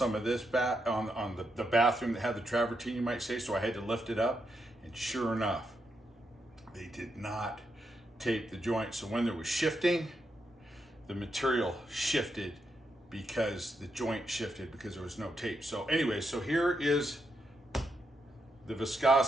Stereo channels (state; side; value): normal; both; correlation 0.82